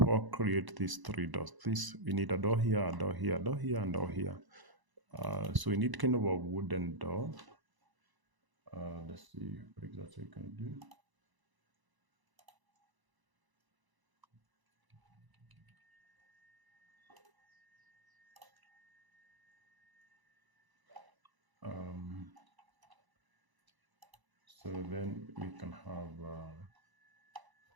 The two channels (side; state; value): left; late; 1.0 ms